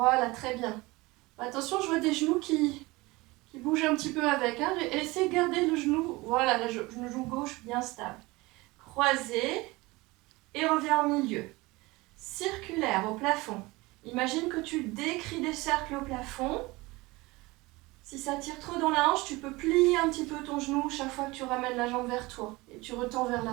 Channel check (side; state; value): left; quieter; 22.2 dB